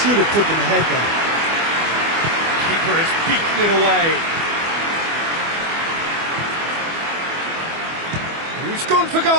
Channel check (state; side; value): late; left; 24 ms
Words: have put them ahead there. Keeper has beaten it away. He's gone for